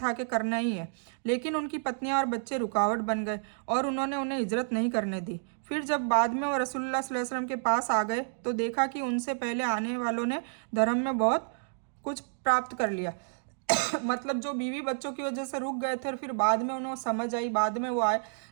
कि करना ही है। लेकिन उनकी पत्नियां और बच्चे रुकावट बन गए और उन्होंने उन्हें हिजरत नहीं करने दी। फिर जब बाद में वो रसूलुल्लाह सल्लल्लाहु अलैहि वसल्लम के पास आ गए तो देखा कि उनसे पहले आने वालों ने धर्म में बहुत कुछ प्राप्त कर लिया। मतलब जो बीवी बच्चों की वजह से रुक गए थे और फिर बाद में उन्हें समझ आई, बाद में वो आए,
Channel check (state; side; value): silent; left; digital silence